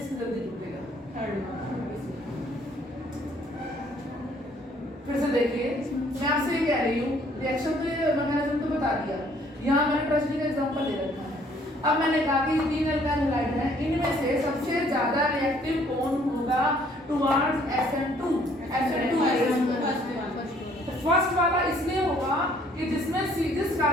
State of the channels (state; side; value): normal; both; correlation 0.62